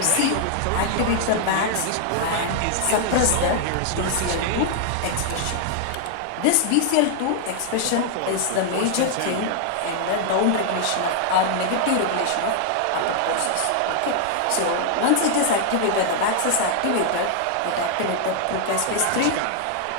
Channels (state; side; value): different; both; correlation 0.00